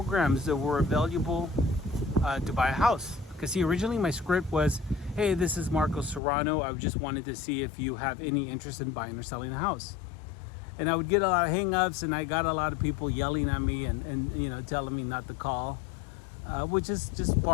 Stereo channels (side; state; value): right; drops out; at 6.2 s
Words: that were available to buy a house. Because see, originally my script was, hey, this is Marco Serrano. I just wanted to see if you have any interest in buying or selling a house. And I would get a lot of hang-ups, and I got a lot of people yelling at me and telling me not to call, which is just